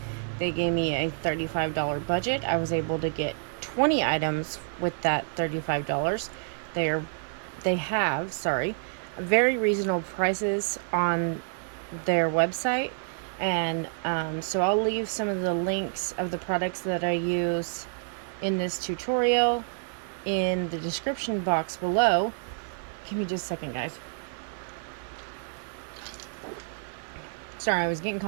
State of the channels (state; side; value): silent; left; digital silence